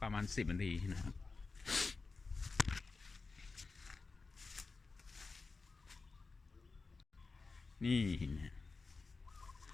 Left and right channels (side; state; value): right; quieter; 4.1 dB